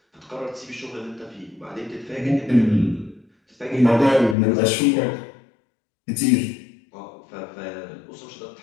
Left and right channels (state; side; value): drops out; right; at 4.4 s